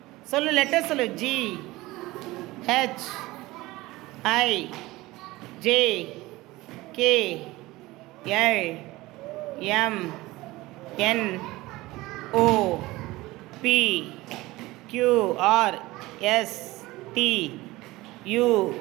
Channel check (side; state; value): left; quieter; 19.5 dB